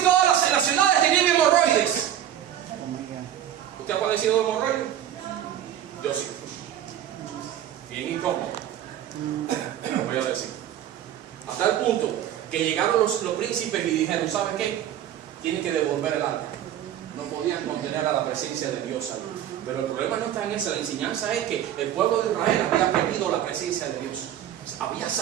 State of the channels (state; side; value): quieter; left; 11.0 dB